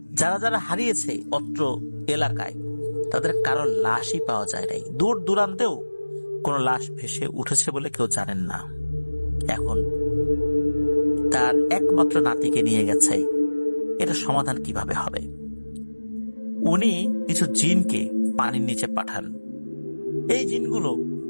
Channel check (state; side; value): inverted; both; correlation -1.00